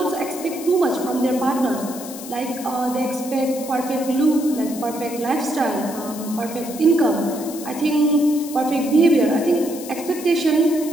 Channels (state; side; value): noise; left; hiss, 13 dB below the sound